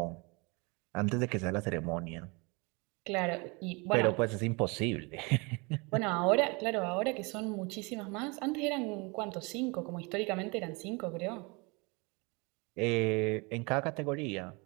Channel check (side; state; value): left; quieter; 28.5 dB